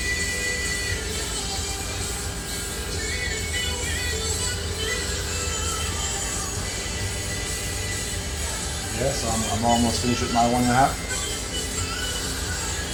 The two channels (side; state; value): both; identical; correlation 1.00